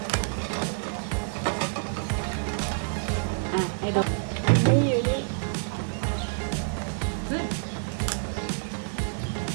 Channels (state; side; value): silent; left; 59 dB below the other